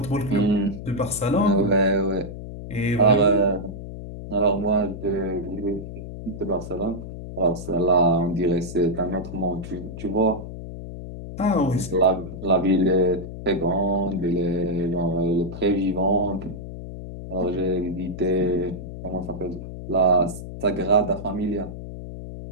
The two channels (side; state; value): left; noise; hum, 10 dB below the sound